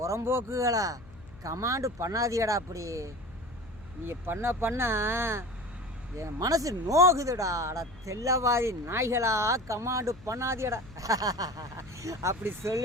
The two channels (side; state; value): left; noise; hum, 21 dB below the sound